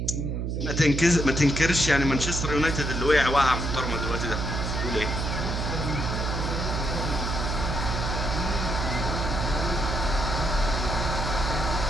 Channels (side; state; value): right; noise; hum, 1 dB below the sound